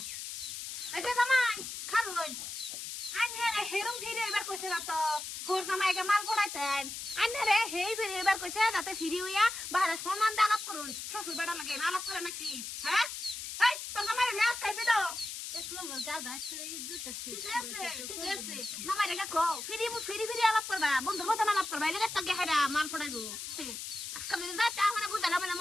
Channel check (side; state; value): left; noise; hiss, 7 dB below the sound